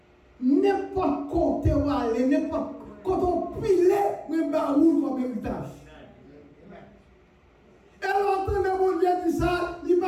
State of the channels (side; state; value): both; identical; correlation 1.00